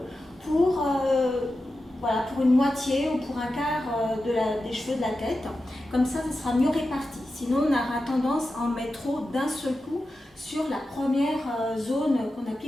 pour, voilà, pour une moitié ou pour un quart des cheveux de la tête. Comme ça sera mieux réparti. Sinon, on aura tendance à en mettre trop d'un seul coup sur la première zone qu'on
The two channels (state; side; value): normal; both; correlation 0.91